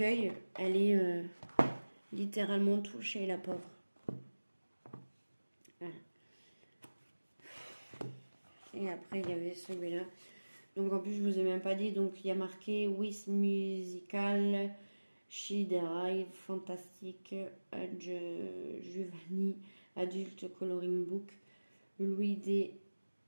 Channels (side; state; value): both; inverted; correlation -1.00